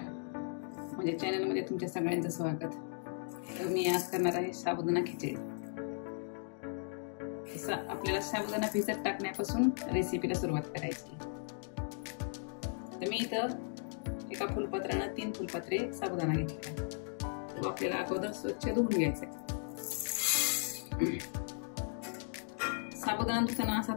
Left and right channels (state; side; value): silent; right; 53 dB below the other